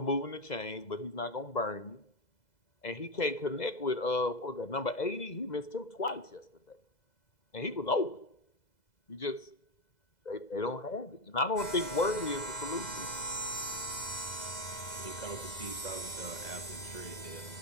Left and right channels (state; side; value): late; right; 2.0 ms